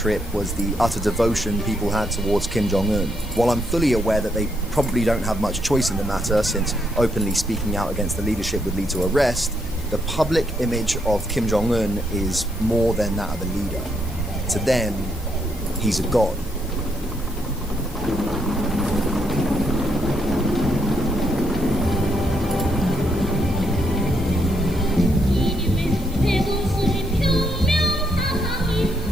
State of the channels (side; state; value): both; normal; correlation 0.76